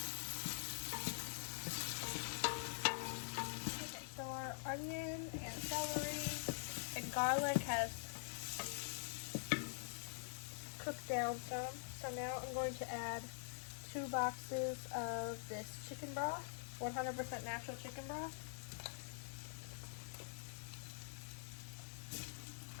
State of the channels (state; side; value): silent; right; digital silence